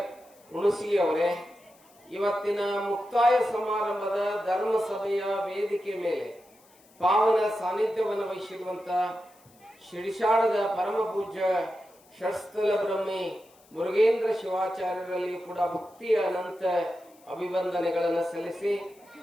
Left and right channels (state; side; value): noise; left; hiss, 29 dB below the sound